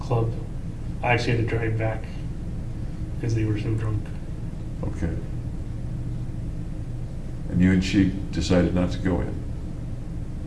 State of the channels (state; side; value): identical; both; correlation 1.00